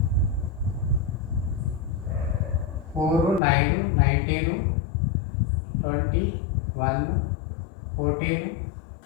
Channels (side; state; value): right; drops out; at 3.4 s